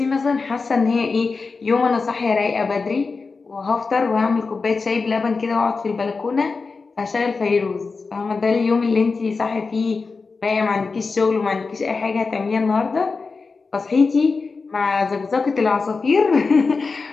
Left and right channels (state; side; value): quieter; right; 4.4 dB